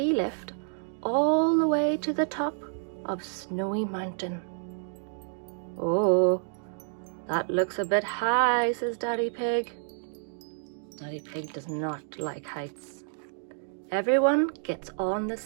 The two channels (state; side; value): silent; left; digital silence